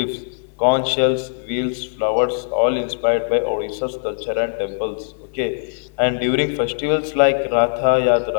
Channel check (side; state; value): right; silent; 58 dB below the other